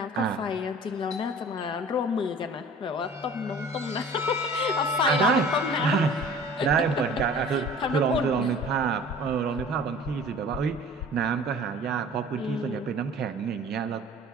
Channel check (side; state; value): both; normal; correlation 0.45